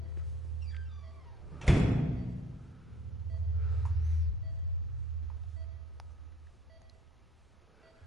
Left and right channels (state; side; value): normal; both; correlation 0.59